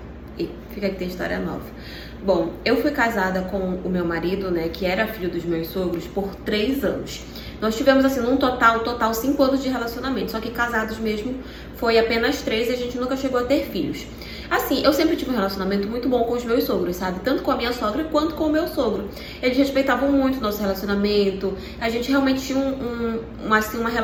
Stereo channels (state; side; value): identical; both; correlation 1.00